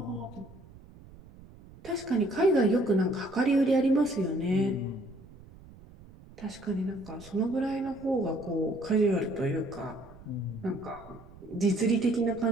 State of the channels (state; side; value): noise; right; rumble, 21 dB below the sound